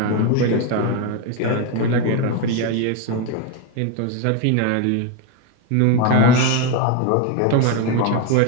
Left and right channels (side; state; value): both; different; correlation 0.02